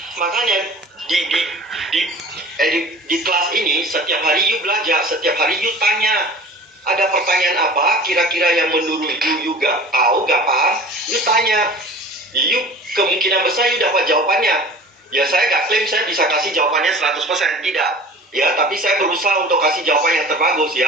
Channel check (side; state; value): both; normal; correlation 0.41